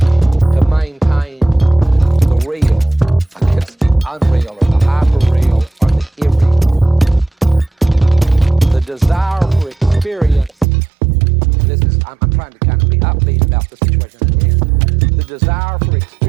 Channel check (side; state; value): left; drops out; at 10.7 s